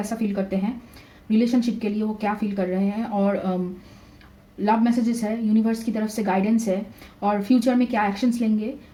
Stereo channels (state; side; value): identical; both; correlation 1.00